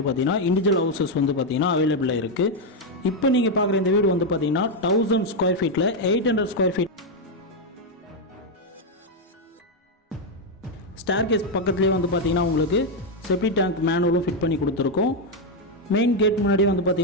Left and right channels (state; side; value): normal; both; correlation 0.03